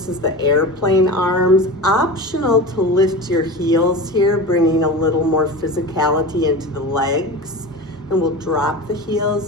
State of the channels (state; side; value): normal; both; correlation 0.30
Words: is the airplane arms. Optional to lift your heels here, bringing a little more physicality into the legs. And we'll drop the